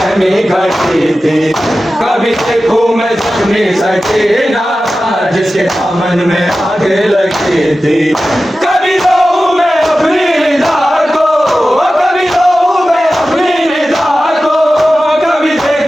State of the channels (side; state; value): both; normal; correlation 0.94